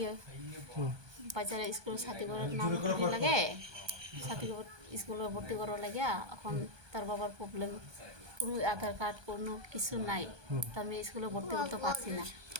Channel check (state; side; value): late; left; 1.2 ms